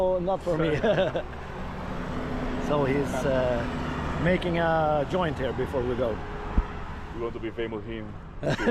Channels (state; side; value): identical; both; correlation 1.00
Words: not for me. So he's making a joint here before we go. We want to be famous him